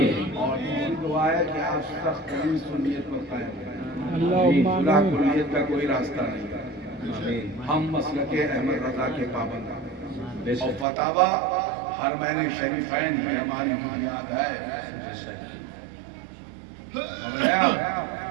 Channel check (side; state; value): left; drops out; at 10.9 s